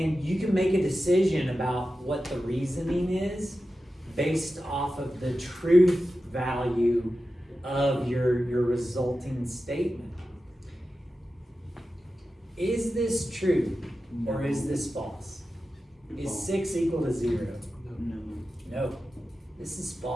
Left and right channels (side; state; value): both; normal; correlation 0.93